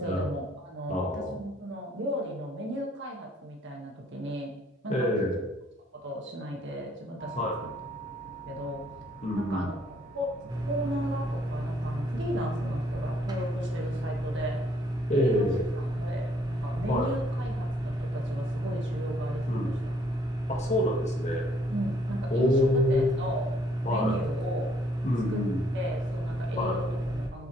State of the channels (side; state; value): both; normal; correlation 0.66